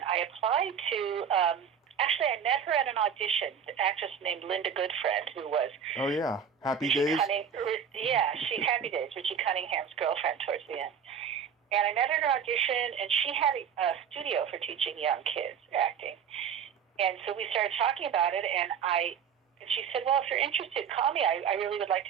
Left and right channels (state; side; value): quieter; left; 7.6 dB